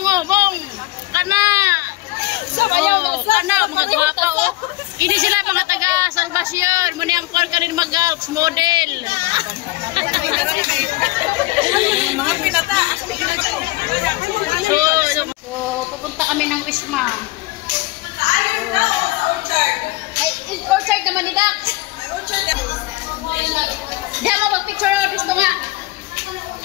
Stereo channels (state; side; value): quieter; right; 19.8 dB